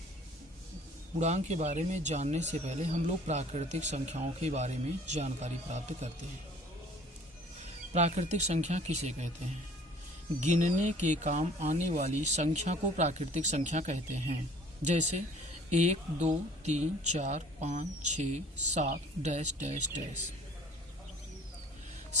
के बारे में जानने से पहले हम लोग प्राकृतिक संख्याओं के बारे में जानकारी प्राप्त करते हैं। प्राकृतिक संख्या किसे कहते हैं? गिनने के काम आने वाली संख्या को प्राकृतिक संख्या कहते हैं। जैसे 1, 2, 3, 4, 5, 6, 7 डैश डैश डैश।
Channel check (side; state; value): both; normal; correlation 0.52